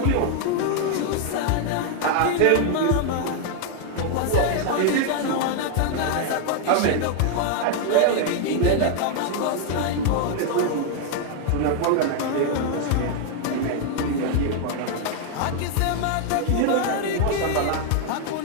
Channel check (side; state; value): both; different; correlation 0.00